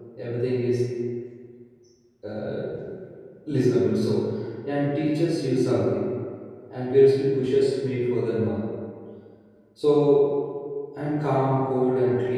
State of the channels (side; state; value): both; identical; correlation 1.00